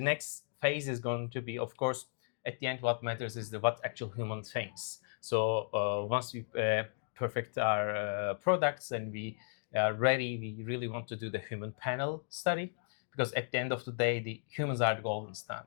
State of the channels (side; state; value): right; silent; digital silence